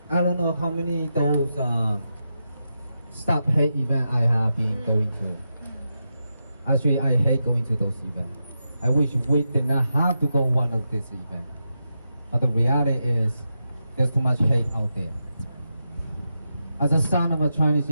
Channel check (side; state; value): both; inverted; correlation -0.87